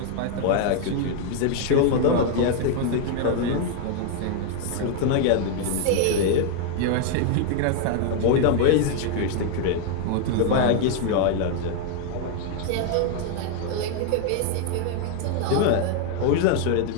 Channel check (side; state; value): both; different; correlation 0.00